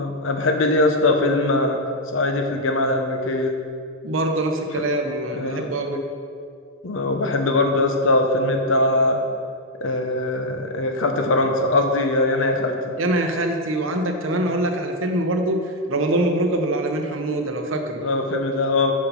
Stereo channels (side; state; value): both; normal; correlation -0.03